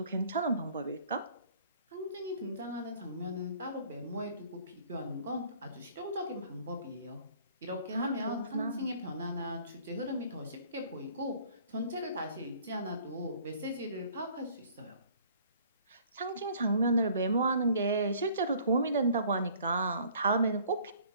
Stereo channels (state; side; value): inverted; both; correlation -0.55